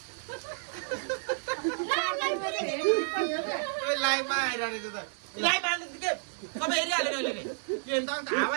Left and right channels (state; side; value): silent; left; digital silence